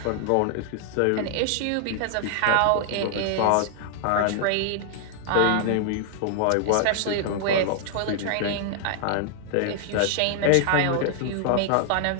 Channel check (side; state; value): both; different; correlation 0.00